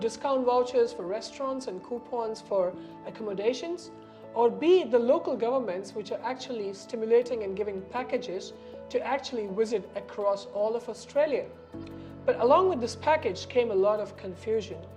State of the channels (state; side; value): identical; both; correlation 1.00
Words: vouchers for restaurants and coupons for accommodations, or be it the local governments which are actually stimulating and giving packages to actually visit across all of Australia. But along with this package came a lot of confusion,